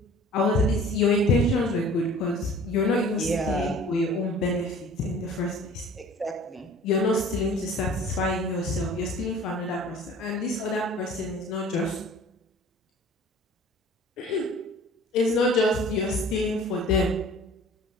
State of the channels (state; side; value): normal; both; correlation 0.47